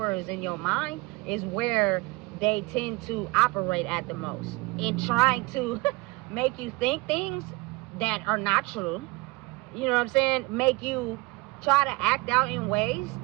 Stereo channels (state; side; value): quieter; left; 24.1 dB